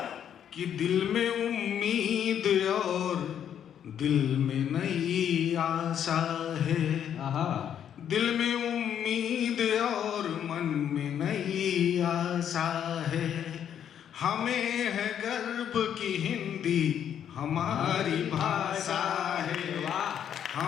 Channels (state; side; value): quieter; right; 9.3 dB